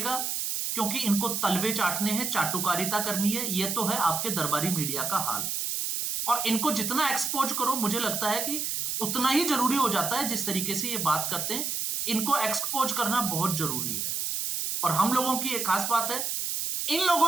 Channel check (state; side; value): noise; right; hiss, 1 dB below the sound